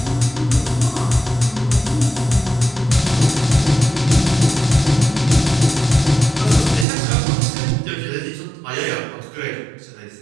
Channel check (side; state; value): left; drops out; at 6.9 s